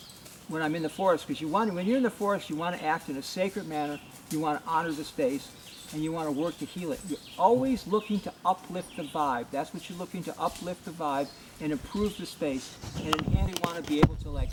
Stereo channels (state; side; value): identical; both; correlation 1.00